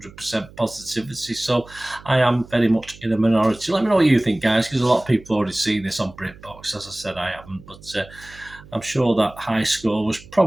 positivity, so I am very much in a minority. Let me know what you think, guys, because a lot of people have already seen this on Britbox. As I said, I haven't, but I'm sure that high score was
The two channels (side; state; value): right; noise; hum, 21 dB below the sound